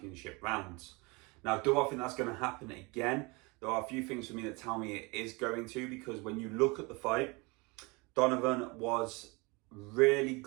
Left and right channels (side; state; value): left; quieter; 27.2 dB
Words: rounds. Now, do I think that's going to happen again? There are a few things for me that tell me it is going to, because when you look at the fight, Donovan was really